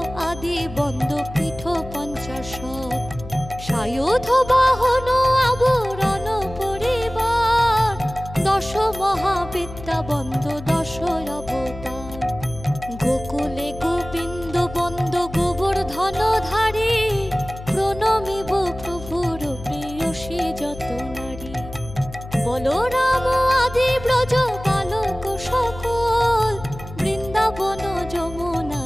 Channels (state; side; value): noise; left; hum, 13 dB below the sound